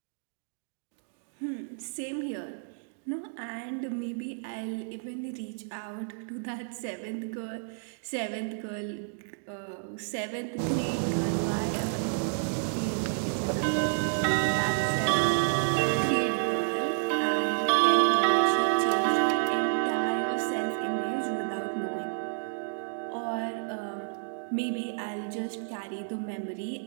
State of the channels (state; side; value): silent; left; digital silence